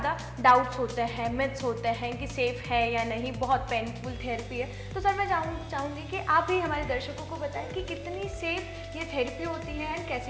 डाउट्स होते हैं, मिथ्स होते हैं कि सेफ़ है या नहीं, बहुत पेनफुल थेरेपी है। तो सर मैं चाहूँगी कि आप ही हमारे दर्शकों को बताएं कि कितनी सेफ़ ये थेरेपी होती है एंड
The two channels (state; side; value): identical; both; correlation 1.00